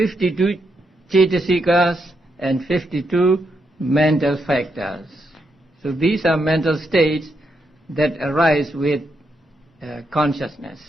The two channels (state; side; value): normal; both; correlation 0.81